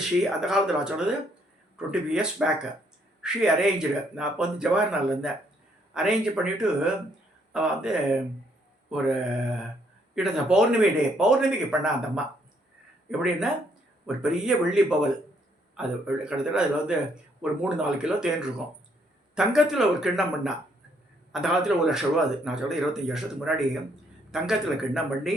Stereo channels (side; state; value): both; normal; correlation 0.69